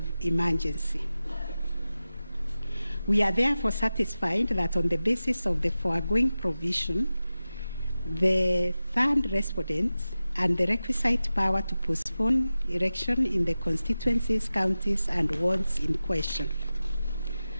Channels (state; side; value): inverted; both; correlation -0.95